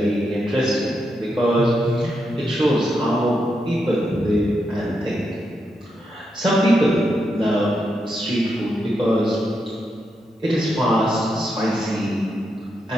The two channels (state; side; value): normal; both; correlation 0.83